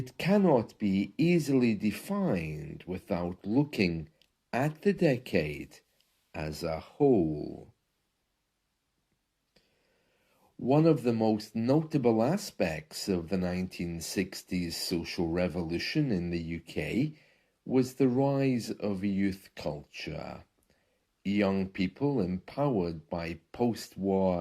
cannot be easily defined without looking at the decade as a whole. One of the most notable aspects of the 1960s social revolution in the UK was the rise of youth culture. Young people empowered by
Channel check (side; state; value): both; identical; correlation 1.00